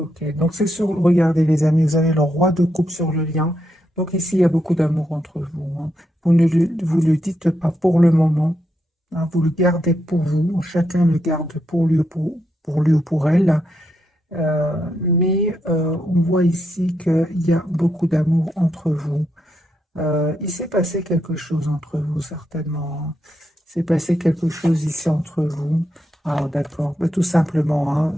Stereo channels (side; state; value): both; normal; correlation 0.82